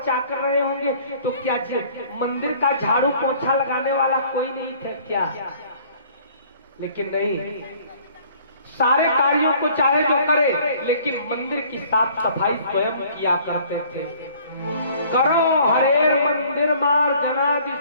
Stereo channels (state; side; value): inverted; both; correlation -0.55